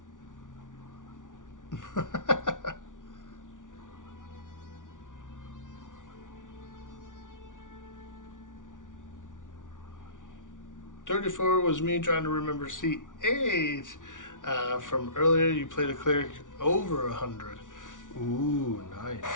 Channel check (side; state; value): right; late; 0.87 ms